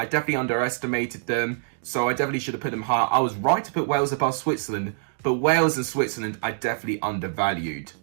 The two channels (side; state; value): left; silent; digital silence